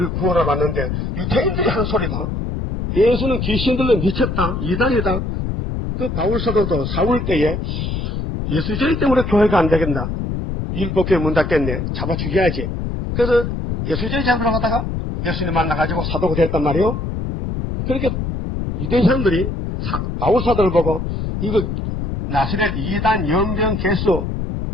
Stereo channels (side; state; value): left; noise; rumble, 3 dB below the sound